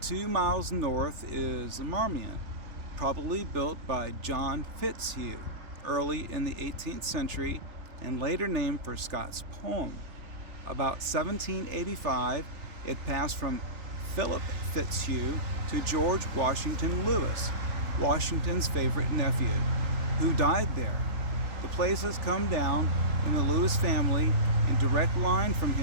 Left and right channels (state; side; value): late; left; 3.4 ms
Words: 2 miles north is the Marmion, probably built by John Fitzhugh early in the 18th century and later named for Scott's poem. About 1785, it passed from Philip Fitzhugh to George Washington Lewis, Washington's favorite nephew, who died there. The place has come down in the Lewis family in direct line from